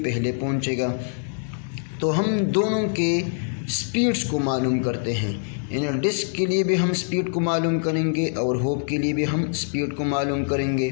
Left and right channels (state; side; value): silent; right; digital silence